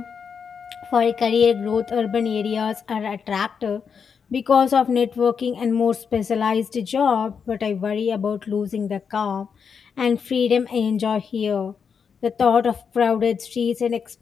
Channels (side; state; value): right; quieter; 6.4 dB